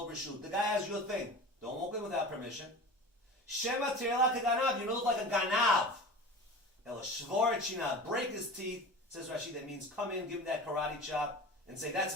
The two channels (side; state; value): both; normal; correlation 0.34